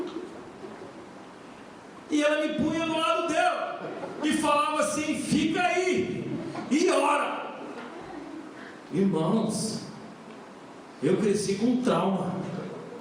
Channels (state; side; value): identical; both; correlation 1.00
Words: E ela me punha do lado dela e falava assim: fica aí e ora. Irmãos, eu cresci com trauma.